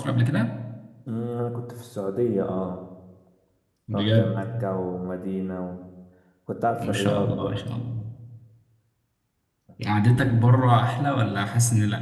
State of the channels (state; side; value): identical; both; correlation 1.00